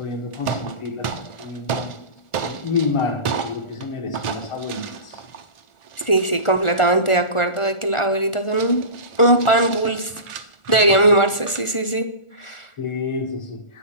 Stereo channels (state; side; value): late; right; 1.4 ms